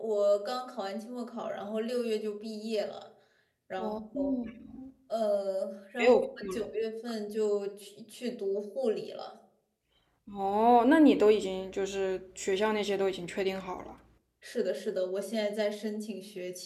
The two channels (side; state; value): both; identical; correlation 1.00